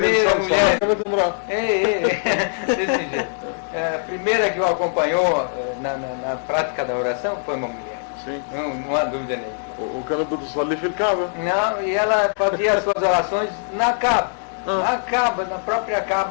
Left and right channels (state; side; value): silent; right; digital silence